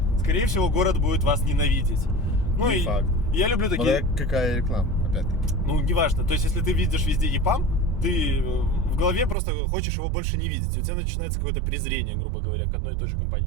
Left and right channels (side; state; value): left; drops out; at 9.3 s